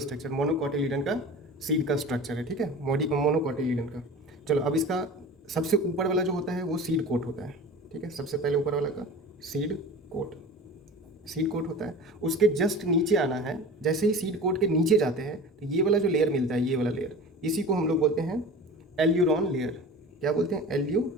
मोनोकोटिलीडन का सीड का स्ट्रक्चर है। ठीक है, मोनोकोटिलीडन का। चलो, अब इसका सबसे ऊपर वाला जो होता है वो सीड कोट होता है। ठीक है, सबसे पहले ऊपर वाला का सीड कोट, सीड कोट होता है। उसके जस्ट नीचे आना है। जैसे ही सीड कोट के नीचे जाते हैं तो ये वाला जो लेयर मिलता है, ये वाला लेयर, इसी को हम लोग बोलते हैं एल्यूरॉन लेयर। क्या बोलते हैं?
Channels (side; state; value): both; normal; correlation 0.36